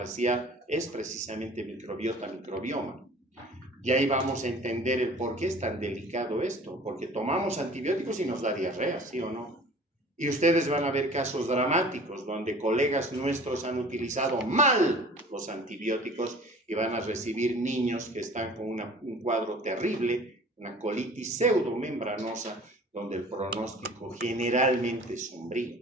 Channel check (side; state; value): both; normal; correlation 0.46